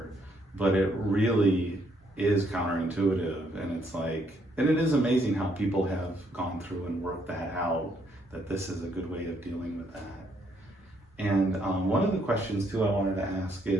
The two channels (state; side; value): normal; both; correlation 0.71